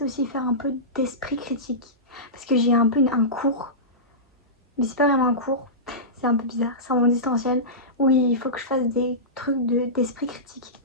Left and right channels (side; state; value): both; normal; correlation -0.18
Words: aussi faire un peu d'esprit critique. Parce que j'ai un peu un cours. Mais c'est pas vraiment un cours. C'est un peu bizarre. C'est en distanciel. Où il faut que je fasse des trucs d'esprit critique.